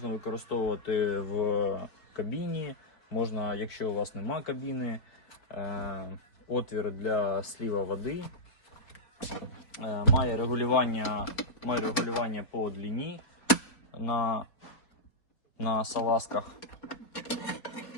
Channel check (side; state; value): right; late; 4.0 ms